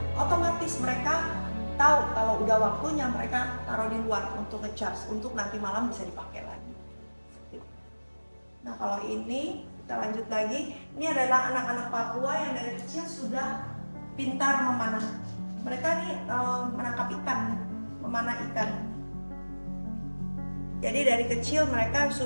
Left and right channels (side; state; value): both; inverted; correlation -1.00